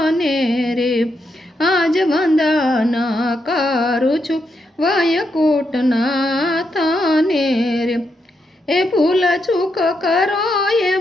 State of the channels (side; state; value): both; normal; correlation 0.82